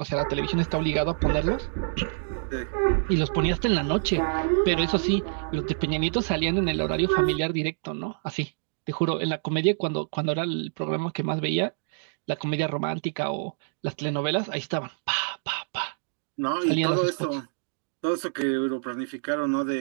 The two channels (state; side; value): silent; left; digital silence